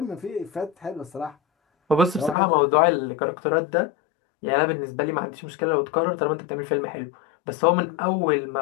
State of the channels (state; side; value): drops out; right; at 2.4 s